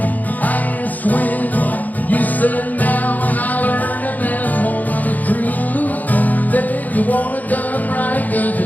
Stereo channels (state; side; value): late; right; 0.081 ms